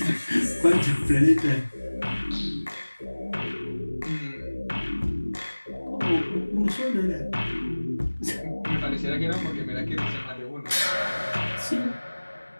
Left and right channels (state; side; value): inverted; both; correlation -1.00